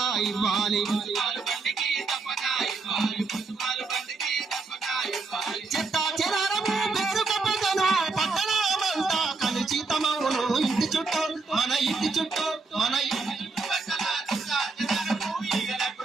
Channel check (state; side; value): quieter; left; 4.1 dB